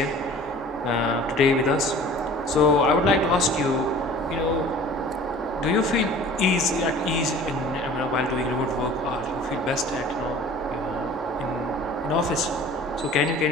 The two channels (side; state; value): both; normal; correlation 0.45